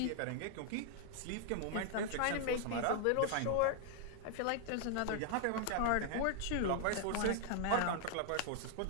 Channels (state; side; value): different; both; correlation -0.01